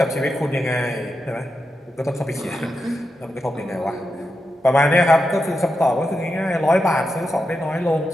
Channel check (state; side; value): normal; both; correlation 0.87